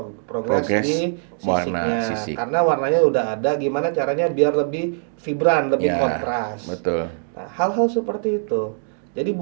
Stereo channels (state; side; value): silent; left; 64 dB below the other